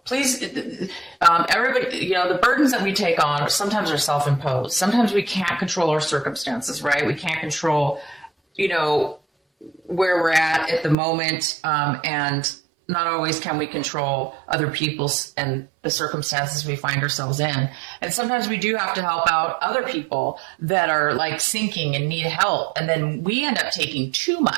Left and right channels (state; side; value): drops out; left; at 11.0 s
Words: Please, everybody, the burdens that we take on sometimes are self-imposed. Sometimes we can't control our circumstances, right? We can't control, where we're at the moment. And not always can we control other people's and the circumstances we find ourselves in. And sometimes we do have to help out other people that are like sinking and need help. And then we end up taking too